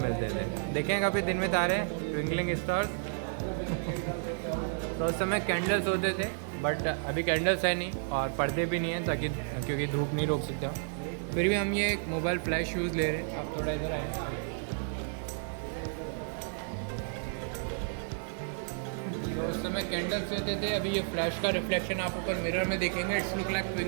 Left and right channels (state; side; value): silent; left; digital silence